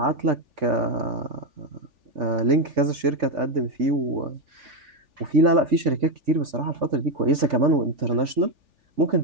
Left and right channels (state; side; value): late; left; 3.4 ms